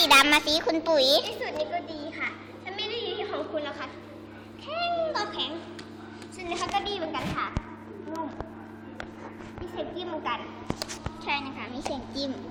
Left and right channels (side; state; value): both; identical; correlation 1.00